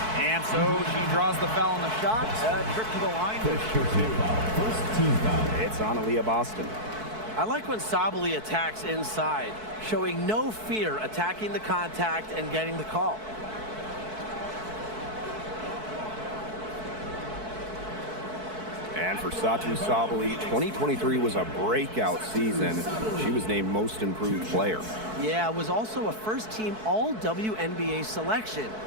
And so she draws the foul on the shot. A trip to the line. First team foul. It's on Aaliyah Boston. I like when Sabali attacks inside, showing no fear attacking the contact and getting the call. And for Satou Sabali, 2023 was a breakout season. She was named Most Improved Player. Yeah, it was also a first-team All-WNBA selection.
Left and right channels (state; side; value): late; left; 4.6 ms